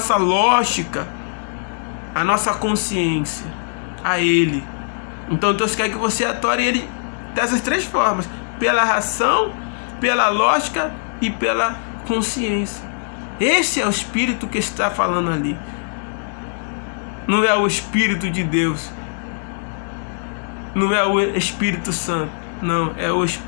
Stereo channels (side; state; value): right; silent; digital silence